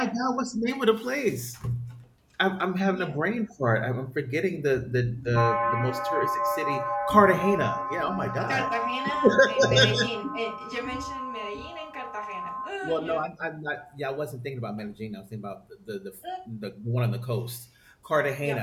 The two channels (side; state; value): both; identical; correlation 1.00